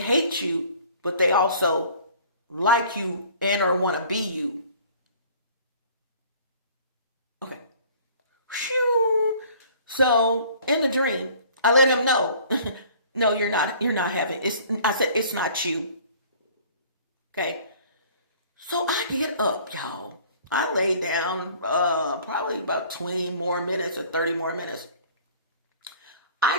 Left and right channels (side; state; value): both; inverted; correlation -0.51